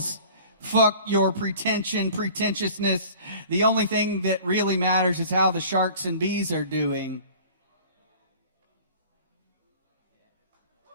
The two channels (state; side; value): inverted; both; correlation -0.46